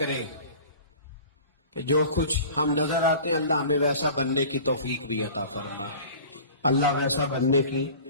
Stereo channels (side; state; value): both; inverted; correlation -0.42